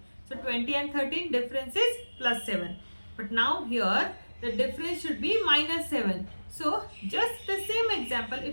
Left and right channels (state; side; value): inverted; both; correlation -1.00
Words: So 20 and 13 difference is plus 7. But now here the difference should be minus 7. So just the same example,